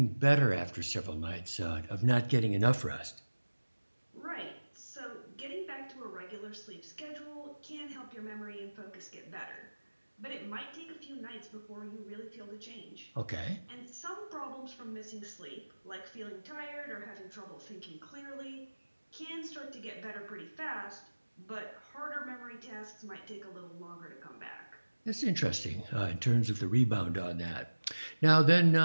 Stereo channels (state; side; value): inverted; both; correlation -1.00